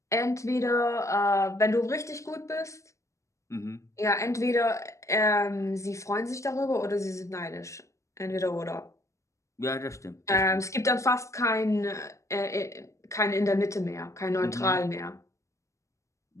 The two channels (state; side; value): late; right; 0.15 ms